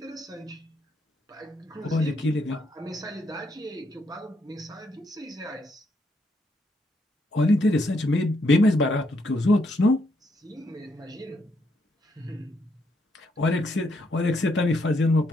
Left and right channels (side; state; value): both; normal; correlation 0.75